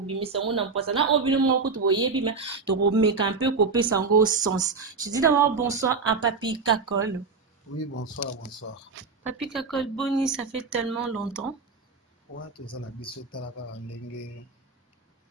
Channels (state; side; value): quieter; left; 4.6 dB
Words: ngona mpasa na obino moko to boyebi mais to ko meka un peu couper sango sens. Je dis d'abord bonsoir à Papi Kakol. Oui, bonsoir, bonsoir. Papi Kakol Boni, ça fait tellement longtemps. Ouais, tout ça la biso talaka ndenge